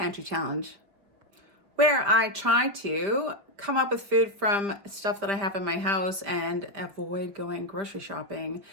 Challenge, where I try to come up with food from stuff that I have in my house and avoid going grocery shopping.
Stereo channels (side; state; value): left; late; 5.3 ms